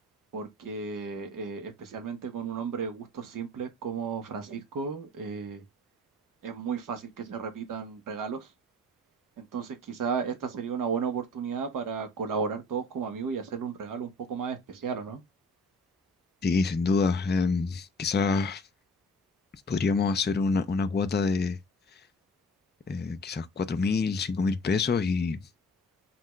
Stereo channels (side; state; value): both; normal; correlation 0.50